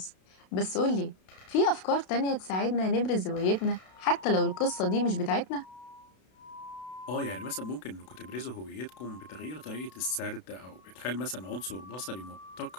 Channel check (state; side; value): late; right; 32 ms